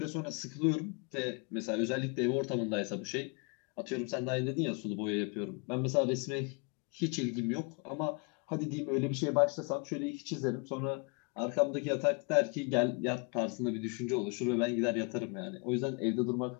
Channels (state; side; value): quieter; right; 34.0 dB